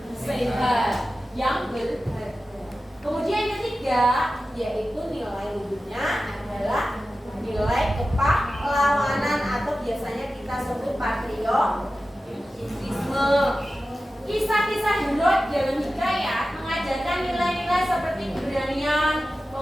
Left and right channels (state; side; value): normal; both; correlation 0.94